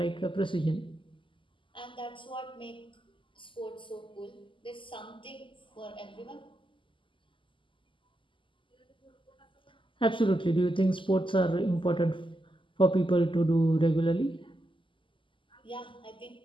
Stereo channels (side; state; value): right; late; 0.25 ms